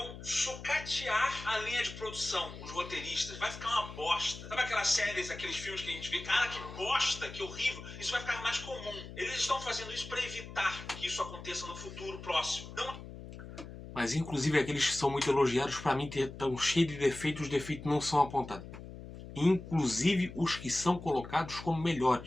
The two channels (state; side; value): noise; left; hum, 13 dB below the sound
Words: sucatear a linha de produção, os roteiristas. Vai ficar uma bosta. Sabe aquelas séries, aqueles filmes que a gente vê? Cara, que bosta, que horrível. Isso vai ficar mais comum. Eles estão fazendo isso para evitar que isso aconteça no futuro próximo. Não... Mas inclusive aqueles que são muito elogiados, para mim estão cheios de defeitos, os defeitos não são apontados. Inclusive os que são colocados como